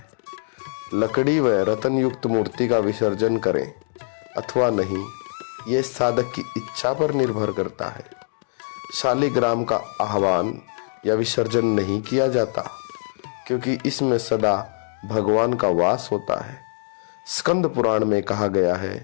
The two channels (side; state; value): right; silent; digital silence